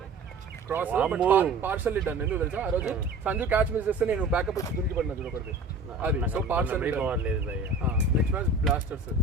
క్రాస్ పార్షల్ డన్. ఎందుకు తెలుసా ఆ రోజు సంజు క్యాచ్ మిస్ చేస్తే నేను బ్యాకప్ వచ్చి దునికి పడినా చూడకూడదు అది. So partial next match blasters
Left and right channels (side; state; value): left; quieter; 3.5 dB